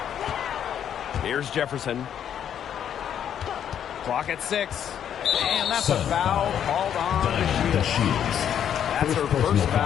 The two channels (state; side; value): quieter; right; 9.3 dB